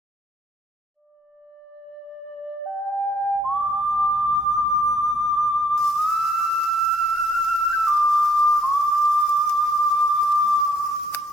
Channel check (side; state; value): both; normal; correlation 0.64